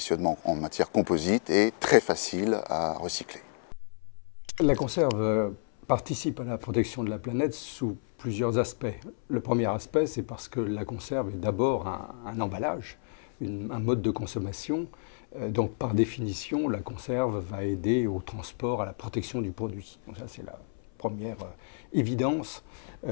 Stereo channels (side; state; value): right; silent; 58 dB below the other